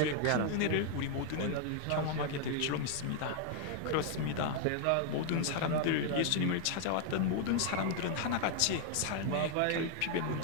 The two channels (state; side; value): different; both; correlation 0.00